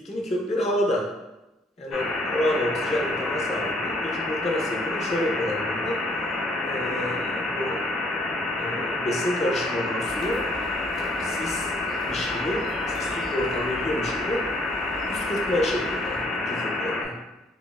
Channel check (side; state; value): both; normal; correlation 0.63